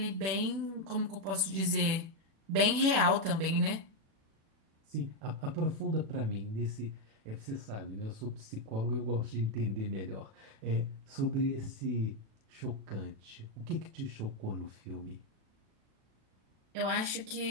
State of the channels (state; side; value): late; left; 36 ms